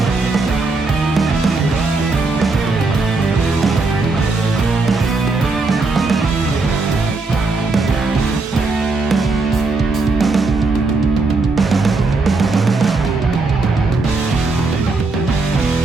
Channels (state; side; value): quieter; left; 3.7 dB